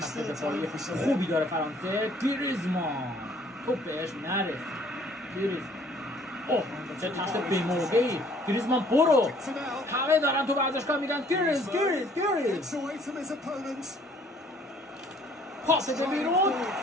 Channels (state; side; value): normal; both; correlation 0.58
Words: دفاعی خوبی داره فرانسه. گریزمان توپ بهش نرسید. گریزمان اوه چه تشت بی‌موقعی. گریزمان برو، همه دارن تو ورزشگاه میگن گریز پاس به بیرون.